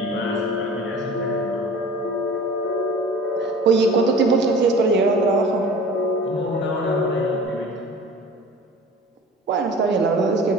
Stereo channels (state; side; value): normal; both; correlation 0.41